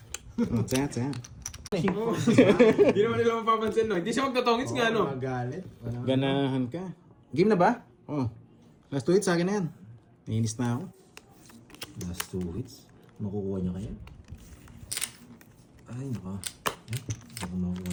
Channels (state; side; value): identical; both; correlation 1.00